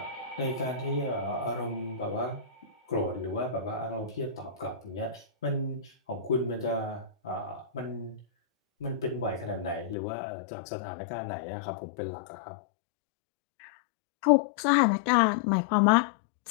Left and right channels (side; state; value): right; drops out; at 10.0 s